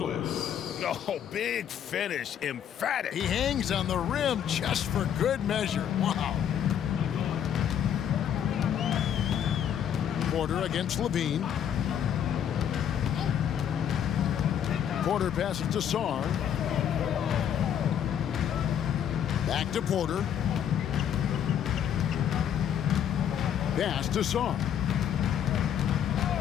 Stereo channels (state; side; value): quieter; right; 9.2 dB